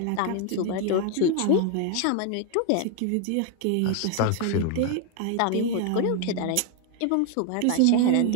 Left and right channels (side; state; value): both; different; correlation 0.01